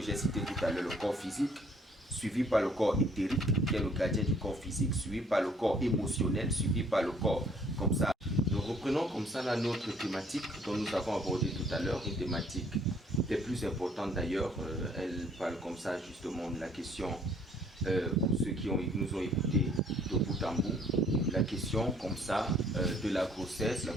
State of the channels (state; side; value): normal; both; correlation 0.61